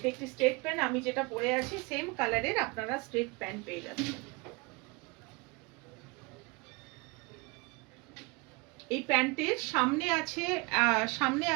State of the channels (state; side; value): quieter; left; 27.0 dB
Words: একটি স্ট্রেট প্যান্ট। আমি যেটা পরে আছি সেম কালারের আপনারা স্ট্রেট প্যান্ট পেয়ে যাচ্ছেন। এই প্যান্টের সামনে